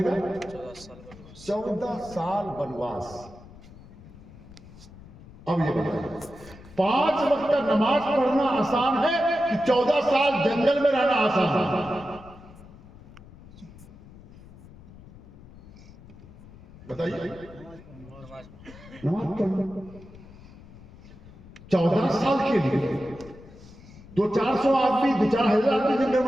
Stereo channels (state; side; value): noise; left; rumble, 20 dB below the sound